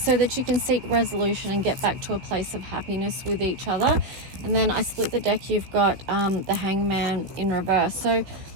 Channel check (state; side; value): late; left; 16 ms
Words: that you can seek resolution and get back to a place of happiness with each other. And then I split the deck, you've got the Hangman in reverse. So